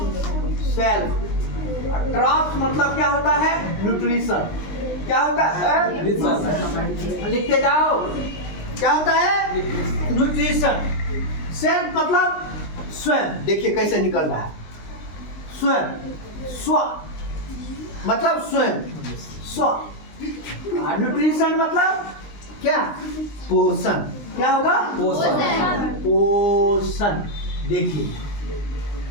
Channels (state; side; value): late; right; 19 ms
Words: सेल्फ। ट्राप्स मतलब क्या होता है? न्यूट्रिशन। क्या होता है? लिखते जाओ। क्या होता है? न्यूट्रिशन। सेल्फ मतलब स्वयं। देखिए कैसे निकल रहा है, स्वयं, स्व मतलब स्वयं, स्व। न्यूट्रिशन मतलब क्या? पोषण। क्या होगा? पोषण, पोषण। देखिए,